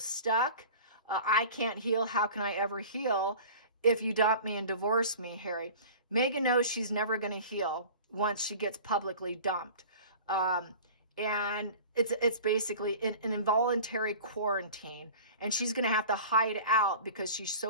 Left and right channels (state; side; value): inverted; both; correlation -0.40